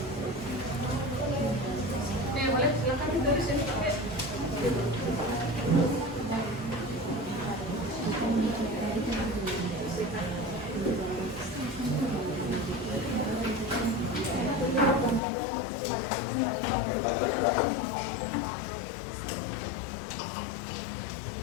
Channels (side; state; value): right; drops out; at 15.2 s